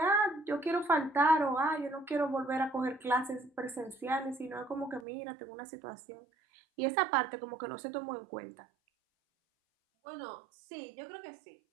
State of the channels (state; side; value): drops out; left; at 5.1 s